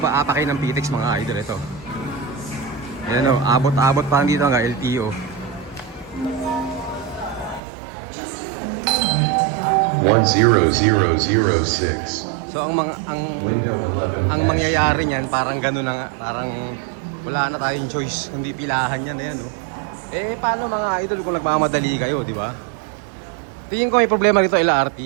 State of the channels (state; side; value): drops out; left; at 7.6 s